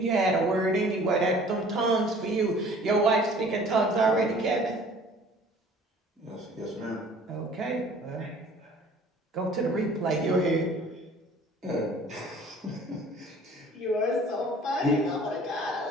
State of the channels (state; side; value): normal; both; correlation 0.50